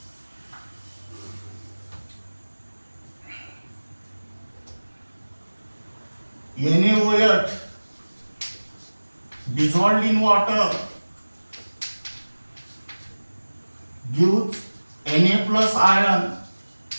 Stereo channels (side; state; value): both; inverted; correlation -1.00